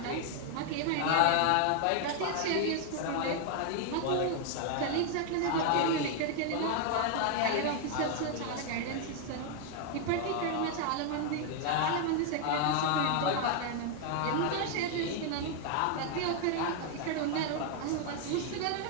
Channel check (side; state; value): both; different; correlation 0.00